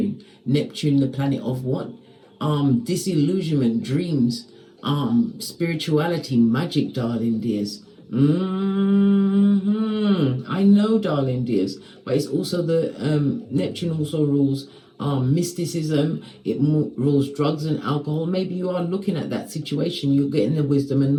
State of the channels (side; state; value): both; identical; correlation 1.00